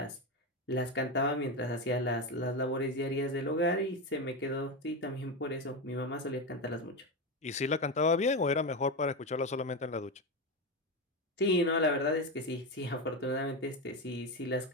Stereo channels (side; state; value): both; normal; correlation 0.15